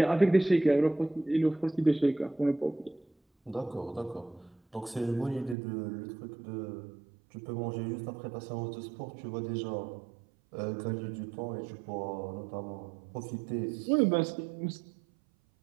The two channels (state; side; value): drops out; left; at 5.6 s